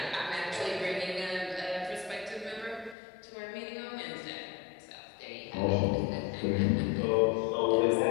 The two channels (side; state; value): right; drops out; at 3.0 s